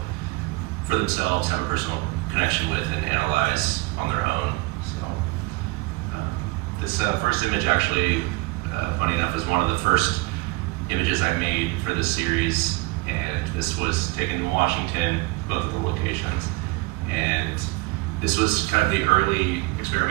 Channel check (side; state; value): left; quieter; 23.0 dB